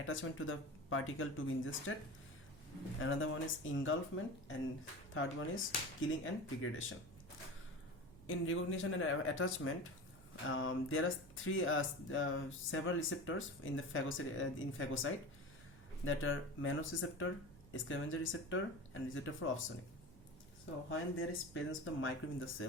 to the particle to be ingested. Another one is engulfment, and third one is killing and degradation. In recognition and attachment, there are several receptors in the phagocyte that are Mannose receptor, scavenger receptor, and receptor for opsonin. So when there is presence of the microbe in the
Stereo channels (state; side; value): noise; right; hum, 21 dB below the sound